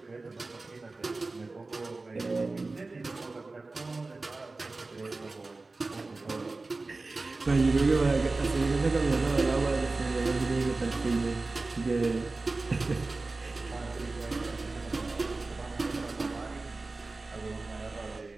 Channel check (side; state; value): left; quieter; 3.4 dB